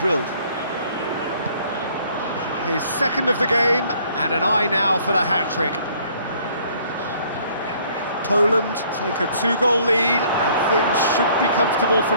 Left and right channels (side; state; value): both; inverted; correlation -0.60